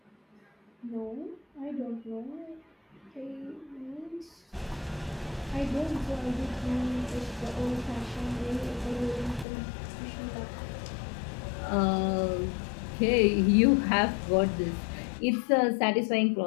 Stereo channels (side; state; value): right; drops out; at 9.5 s